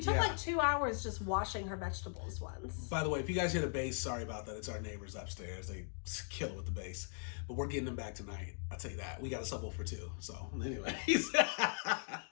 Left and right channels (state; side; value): silent; right; 51 dB below the other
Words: took like 2 hours just washing her vegetables once. By the way, if you guys hear the bass, sorry about that. It's our neighbors upstairs. They kill it with the bass. But we're getting them back tonight. I'll tell you that. We got a subwoofer for 2. So, anyways.